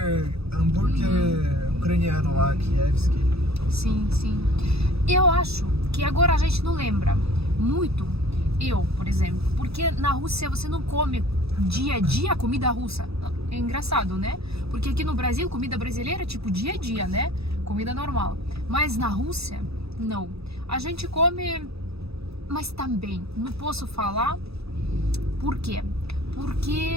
Hambúrguer ucraniano lá, Kievski. Sim. Eu acho que agora a gente não lembra muito. Eu, por exemplo. Porque na Rússia você não come dia a dia comida russa. É engraçado, né? Porque aqui no Brasil, comida brasileira é tipo dia a dia, né? Comida normal. Mas na Rússia, não. A gente come, mas também não posso falar por quê.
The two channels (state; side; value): late; left; 0.78 ms